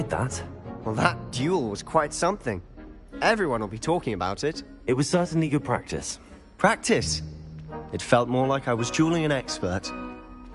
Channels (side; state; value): both; identical; correlation 1.00